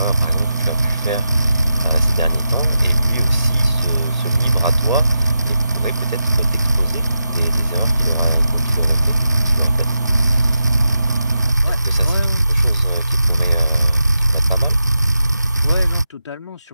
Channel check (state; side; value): inverted; both; correlation -0.88